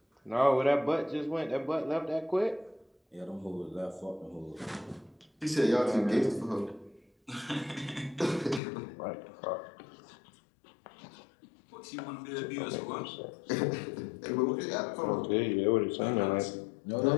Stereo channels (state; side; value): drops out; right; at 8.6 s